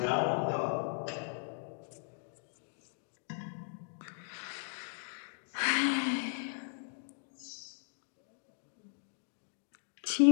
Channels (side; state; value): right; silent; digital silence